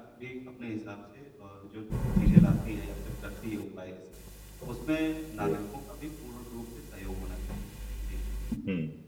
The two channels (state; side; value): identical; both; correlation 1.00